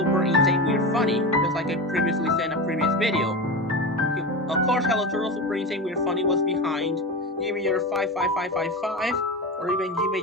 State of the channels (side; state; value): both; normal; correlation 0.22